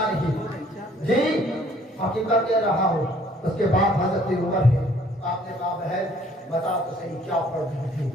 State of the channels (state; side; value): normal; both; correlation 0.59